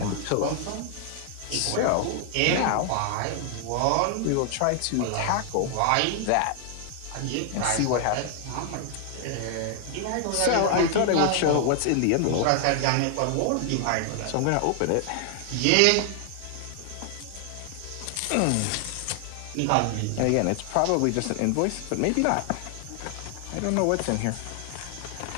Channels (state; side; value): different; both; correlation 0.00